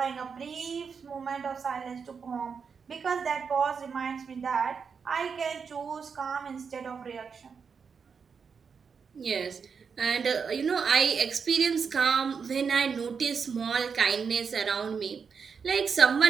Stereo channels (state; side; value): quieter; left; 6.0 dB